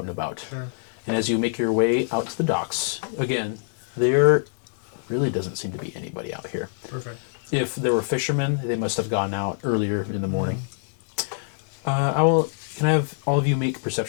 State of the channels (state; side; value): silent; right; digital silence